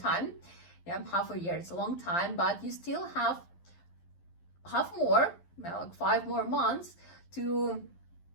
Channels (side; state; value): right; late; 11 ms